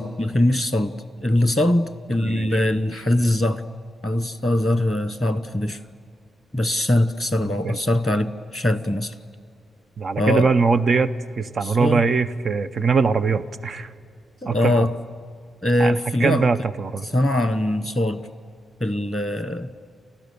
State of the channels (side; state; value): both; normal; correlation 0.85